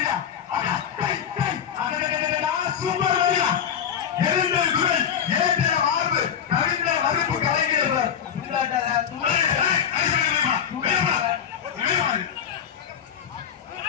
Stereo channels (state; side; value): quieter; right; 8.4 dB